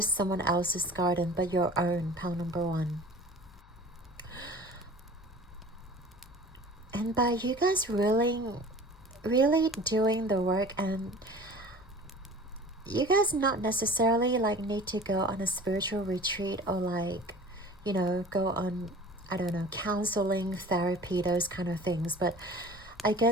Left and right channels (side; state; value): left; noise; hum, 24 dB below the sound